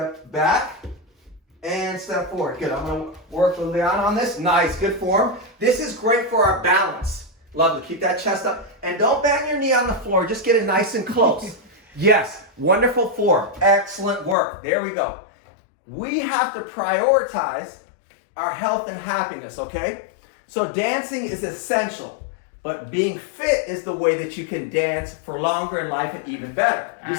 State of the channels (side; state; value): right; drops out; at 14.4 s